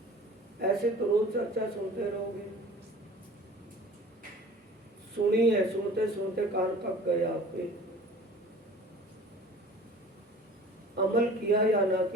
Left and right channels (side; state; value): both; normal; correlation 0.44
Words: ऐसे तो रोज चर्चा सुनते रहोगे। सुनी है, सुनते सुनते कान थक गए आपके। अमल किया या ना